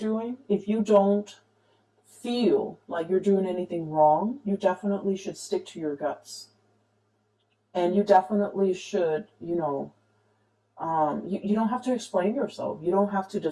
if you don't feel like you're doing anything wrong, you definitely should stick to your guts. And you definitely should, you know, you don't have to explain yourself. You don't have to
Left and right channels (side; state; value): both; identical; correlation 1.00